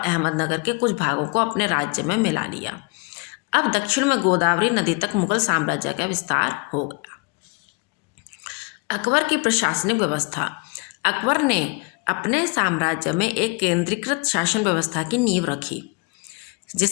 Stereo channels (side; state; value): right; quieter; 30.7 dB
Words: के कुछ भागों को अपने राज्य में मिला लिया। अब दक्षिण में गोदावरी नदी तक मुगल साम्राज्य का विस्तार हो गया। अकबर की प्रशासनिक व्यवस्था। अकबर ने अपने साम्राज्य में एक केंद्रीकृत शासन व्यवस्था की नींव रखी,